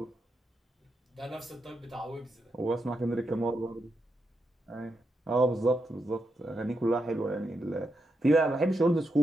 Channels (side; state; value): both; normal; correlation 0.84